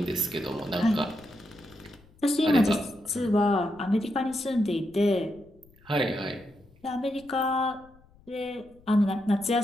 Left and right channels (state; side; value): noise; left; rumble, 27 dB below the sound